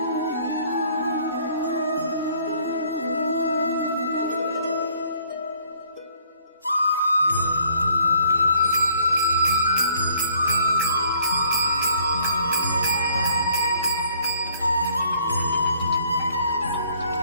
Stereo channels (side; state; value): both; inverted; correlation -0.60